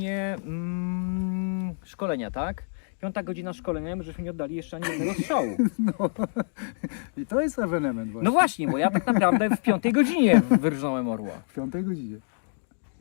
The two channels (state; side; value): silent; right; digital silence